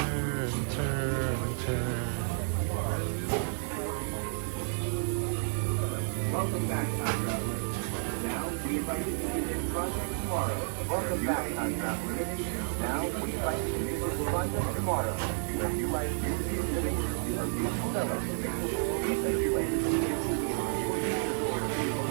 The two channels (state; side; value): silent; left; 57 dB below the other